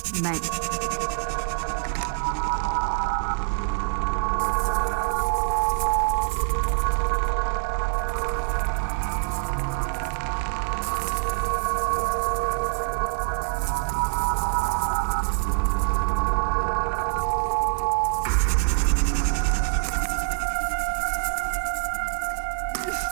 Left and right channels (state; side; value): silent; left; 62 dB below the other